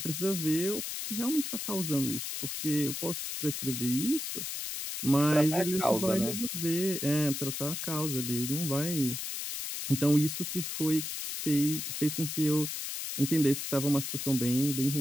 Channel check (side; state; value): left; noise; hiss, 4 dB below the sound